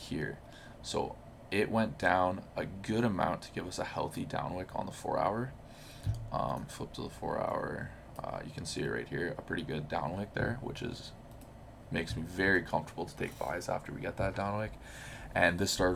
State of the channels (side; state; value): both; identical; correlation 1.00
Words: So it went down a good amount to give us a healthy downwick on the 4 hour. Flip to the 4 hour. You can see it right here, a pretty good downwick there, which makes me very comfortable to take buys after we get that downwick. And this